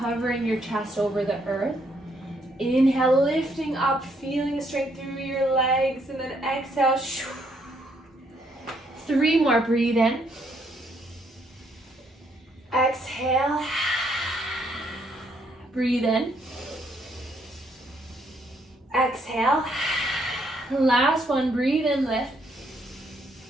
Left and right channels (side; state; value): both; normal; correlation 0.71